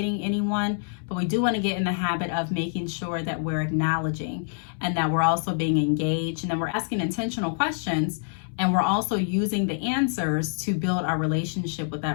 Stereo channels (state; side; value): silent; right; 61 dB below the other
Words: anyone, but we do want to get in the habit of making sure that we're acknowledging and that we're also being engaged and that we're asking intentional questions And we're also using the answers to build our relationship with